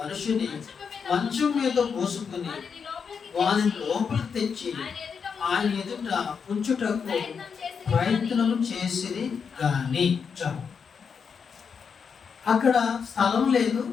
మంచం మీద మోసుకుని వారిని లోపలికి తెచ్చి ఆయన ఎదుట ఉంచుటకు ప్రయత్నం చేసిరి గాని అక్కడ స్థలం లేదు,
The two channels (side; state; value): right; quieter; 6.2 dB